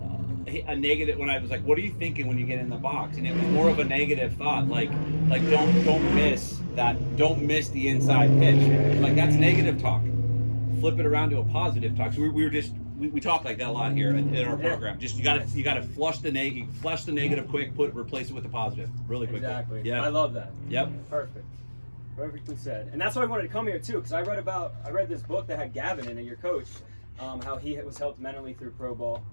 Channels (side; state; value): both; inverted; correlation -1.00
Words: negative. When I was like, what are you thinking when you get in the box? And it was more of a negative thought, don't miss that, don't miss the inside pitch. That's negative talk. Flip it around to a positive talk. So we talk like that a lot here in our program. Just you gotta flush the negative quick, replace it with the positive really quickly. Exactly. Yeah. I love that. Yep. Perfectly said. And that's why I wanted to come here too, because I read this book that had Gavin in it, your coach, how he was helped mentally through pro ball.